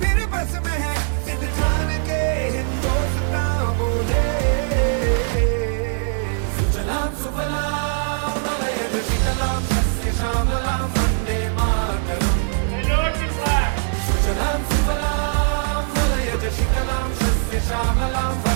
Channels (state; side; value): silent; left; 59 dB below the other